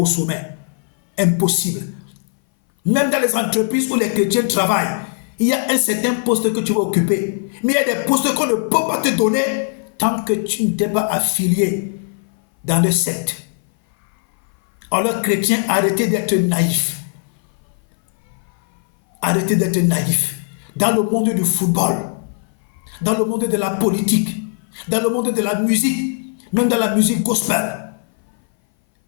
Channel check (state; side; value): silent; right; 60 dB below the other